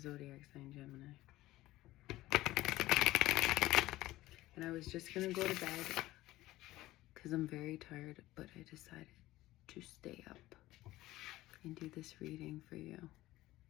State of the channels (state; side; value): quieter; right; 16.8 dB